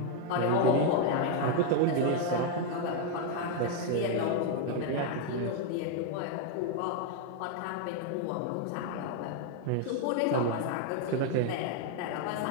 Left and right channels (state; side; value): different; both; correlation 0.01